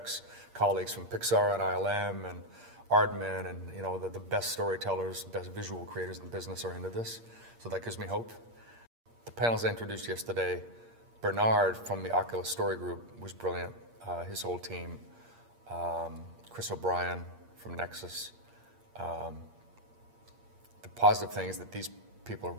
from Pixar and ILM and Aardman, and the best storytellers, best visual creators in the business are into this. So that gives me hope. The panels I introduced yesterday, Bernard from the Oculus Story Group was brilliant. His whole team, Chris O'Brien from Nexus. The positive thing is that these people are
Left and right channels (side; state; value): left; late; 8.6 ms